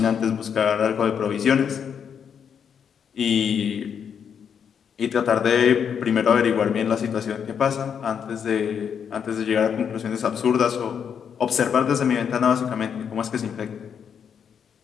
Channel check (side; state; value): right; quieter; 7.5 dB